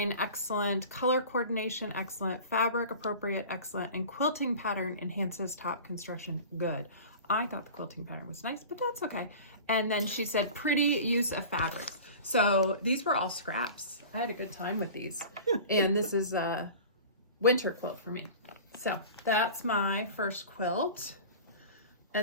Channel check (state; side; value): inverted; both; correlation -0.38